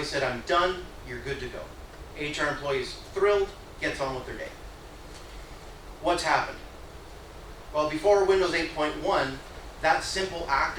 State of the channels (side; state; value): both; identical; correlation 1.00